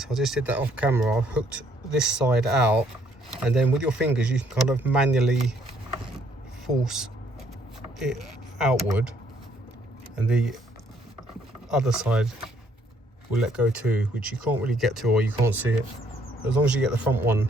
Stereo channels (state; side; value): normal; both; correlation 0.67